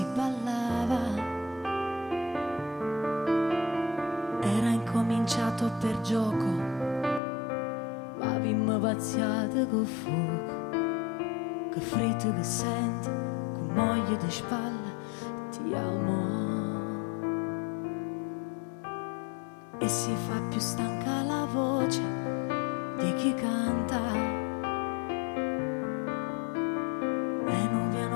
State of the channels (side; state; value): right; drops out; at 7.2 s